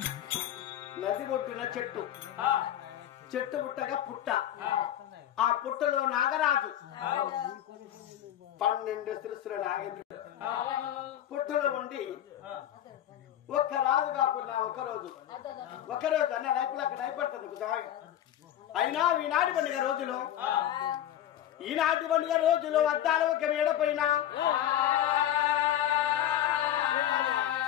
నది ఒడ్డున చెట్టు, చెట్టు పుట్టగా పుట్ట, ఆ పుట్టలో నాగరాజు 12 శిరస్సుల నాగేంద్రుడు పుట్టలో ఉండి ఒక్క రాజు కాకుండా ఒకరోజు అన్న లైఫ్లో అక్కడ అయిపడుతుంది. అయినా ఈనాటి పండుగ రోజులు, ఈనాటి పండుగ రోజులు అద్దాలు ఒక మేడపైన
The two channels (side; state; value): right; quieter; 11.6 dB